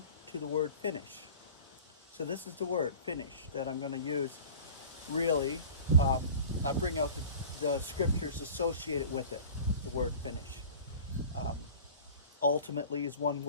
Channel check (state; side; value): inverted; both; correlation -0.41